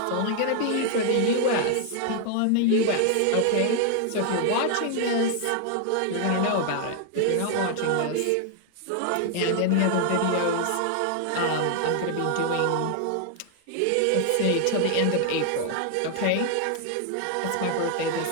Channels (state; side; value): different; both; correlation 0.00